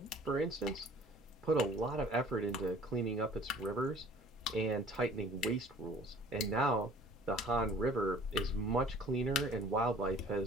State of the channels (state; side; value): normal; both; correlation 0.50